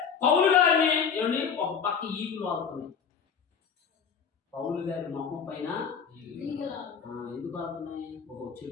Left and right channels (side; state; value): right; quieter; 6.8 dB